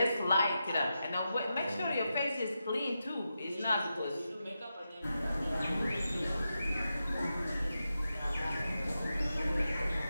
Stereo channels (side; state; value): both; inverted; correlation -0.89